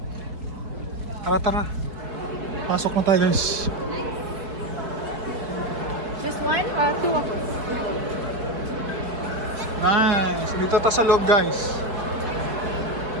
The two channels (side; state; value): left; late; 4.6 ms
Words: Tara. Pasok na tayo guys. Just one or two of us? Nice. Dito tayo sa loob guys.